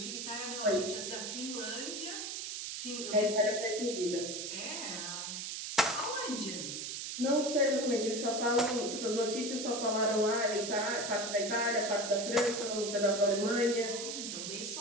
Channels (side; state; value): right; noise; hiss, 5 dB below the sound